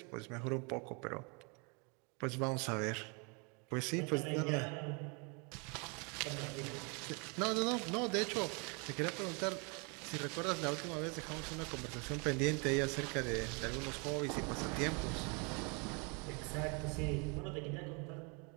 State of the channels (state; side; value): quieter; left; 33.1 dB